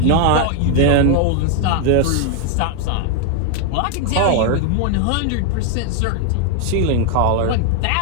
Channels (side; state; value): both; different; correlation 0.00